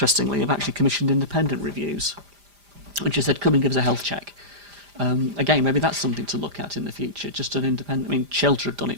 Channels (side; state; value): left; late; 5.0 ms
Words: have actually commissioned independent reviews, which has said, come and give us a health check. Again, maybe that's something to look at in the future, just an independent. I mean, Shelter have done